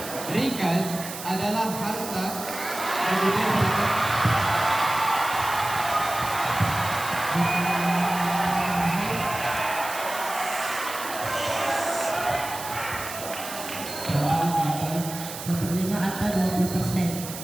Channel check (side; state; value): right; noise; hiss, 10 dB below the sound